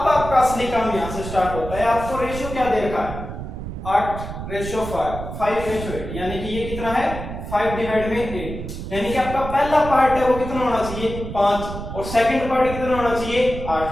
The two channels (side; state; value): right; noise; rumble, 8 dB below the sound